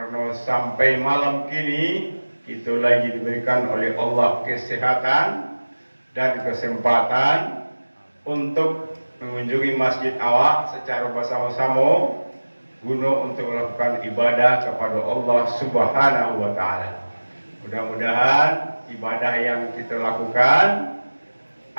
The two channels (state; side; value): inverted; both; correlation -1.00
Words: sampai malam kini kita lagi diberikan oleh Allah kesehatan dan kesempatan untuk mengunjungi masjid awak secara bersama-sama guna untuk melakukan ibadah kepada Allah Subhanahu wa taala. Mudah-mudahan ibadah yang kita lakukan